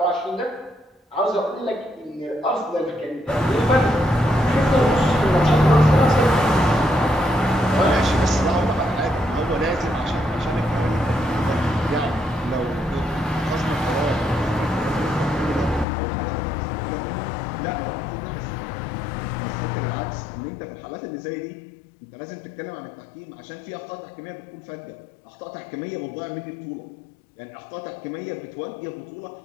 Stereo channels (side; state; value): right; drops out; at 15.9 s